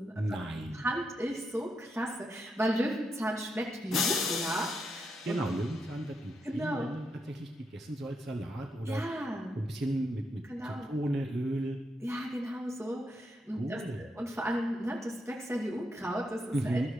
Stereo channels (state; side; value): normal; both; correlation 0.82